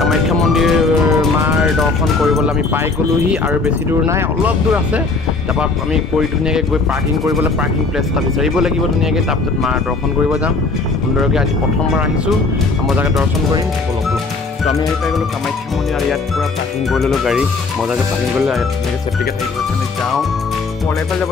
মন্দিৰ মাৰ দৰ্শন কৰিবলৈ আমি পাই গ'লোহি আৰু বেছি দূৰ নাই অলপ দূৰ আছে তাৰপৰা আমি ধুনীয়াকৈ গৈ পাৰ্কিং কৰিবলৈ পাৰ্কিং প্লেচ এটা বিচাৰিব লাগিব ধুনীয়াকৈ তাৰপিছত মাৰ দৰ্শন কৰিব যাম সুন্দৰকৈ আজি প্ৰথমবাৰ আহিছোঁ মজাকৈ দৰ্শন কৰিম তো আমি আহি পাই গ'লোঁ কামাখ্যা মন্দিৰ আৰু ইয়াত পূৰা পাৰ্কিং কৰি ল'লোঁ গাড়ী মজাকৈ পাৰ্কিং কৰিলোঁ ইয়াত ধুনীয়াকৈ চেফটিকৈ থাকিব আমি যাওঁ এইফালে যাব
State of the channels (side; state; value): right; quieter; 3.9 dB